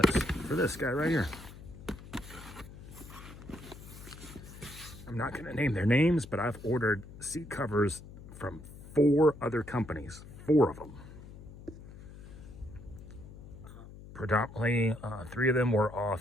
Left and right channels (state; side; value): noise; left; hum, 16 dB below the sound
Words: for this guy right here. I'm not going to name their names, but I've ordered seat covers from 4 other companies, 4 of them. Predominantly, 3 of them were